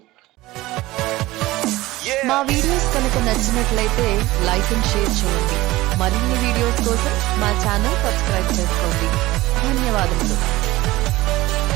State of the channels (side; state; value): left; quieter; 18.4 dB